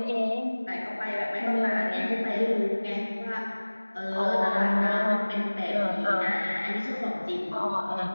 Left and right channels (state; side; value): inverted; both; correlation -1.00